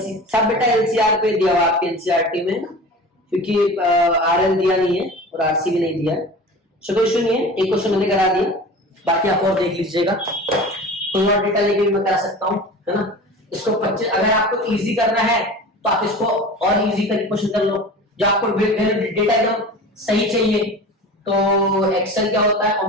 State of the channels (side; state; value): both; normal; correlation 0.36